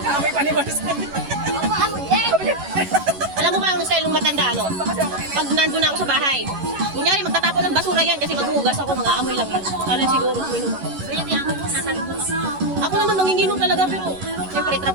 May panibars. Alam mo ba ang style ng matanda, ano? Pag nandun ako sa bahay, kunyari magtatapon ng basura yan kasi maghuhugas ako, mga amoy lang yun. Alam siguro, uminom ako. Ako naman manginginom talaga, pero siyempre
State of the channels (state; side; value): late; left; 11 ms